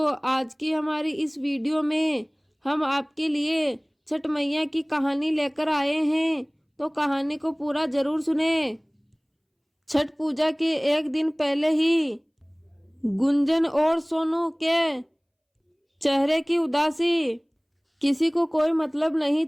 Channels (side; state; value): both; identical; correlation 1.00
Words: आज की हमारी इस वीडियो में हम आपके लिए छठ मैया की कहानी लेकर आए हैं। तो कहानी को पूरा जरूर सुने। छठ पूजा के एक दिन पहले ही गुंजन और सोनू के चेहरे की उदासी किसी को कोई मतलब नहीं